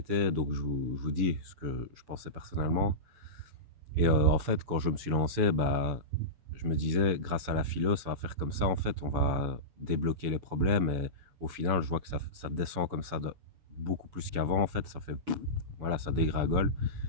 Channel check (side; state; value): left; late; 7.0 ms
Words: Donc je vous dis ce que je pensais personnellement. Et en fait, quand je me suis lancé, bah, je me disais, grâce à la philo, ça va faire comme ça. En fait, on va débloquer les problèmes. Et au final, je vois que ça descend comme ça beaucoup plus qu'avant. En fait, ça fait, voilà, ça dégringole.